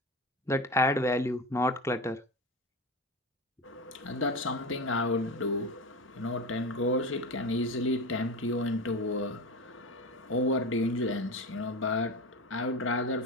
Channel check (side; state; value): both; normal; correlation 0.25